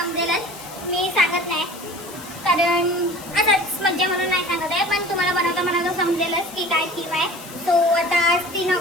मी सांगत नाही कारण असंच मज्जा म्हणून नाही सांगत आहे, पण तुम्हाला बनवता समजेलच की काय थीम आहे. सो आता आज 3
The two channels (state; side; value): noise; left; hiss, 16 dB below the sound